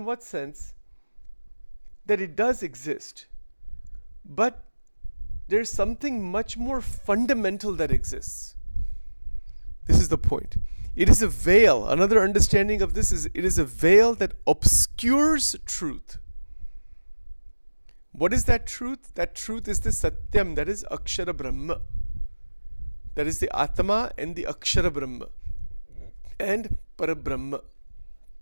what sense? That it does exist, but there's something much more fundamental that exists. This is the point. It is a veil. Another understanding of this is it is a veil that obscures truth. What is that truth? That truth is the Satyam, that is Akshara Brahma. That is the Atma and the Akshara Brahma and Parabrahma.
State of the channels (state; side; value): inverted; both; correlation -1.00